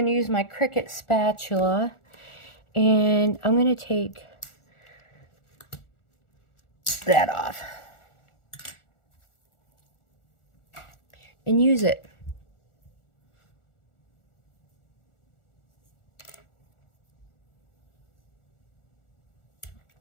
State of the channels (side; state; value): right; late; 1.4 ms